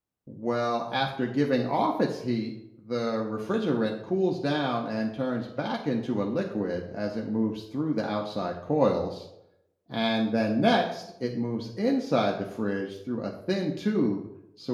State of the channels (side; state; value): both; identical; correlation 1.00